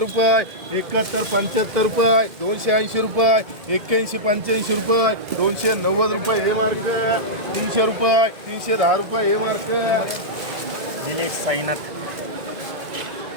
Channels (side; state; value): left; late; 2.2 ms